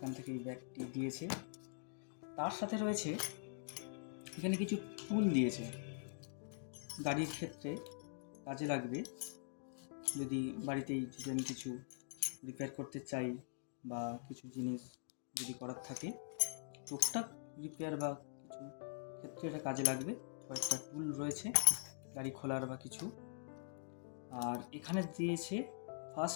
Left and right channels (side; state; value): right; silent; digital silence